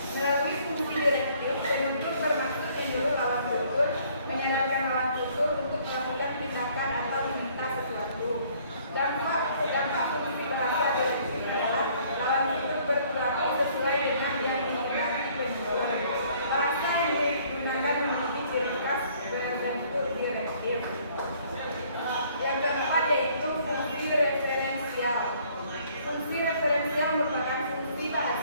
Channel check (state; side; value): inverted; both; correlation -0.60